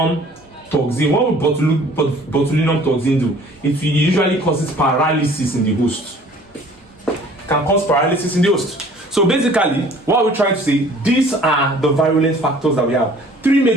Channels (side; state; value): both; normal; correlation 0.52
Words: botulinum toxin do? It usually causes paralysis in the host. Can cause paralysis in the host. So basically, what we're trying to say, these are the virulent factors that we have. Three